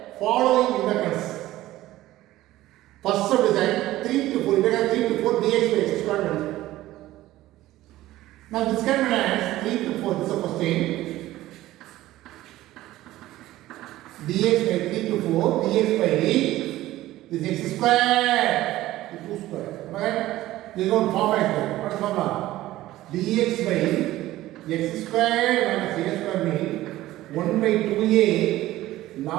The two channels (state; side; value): quieter; left; 15.8 dB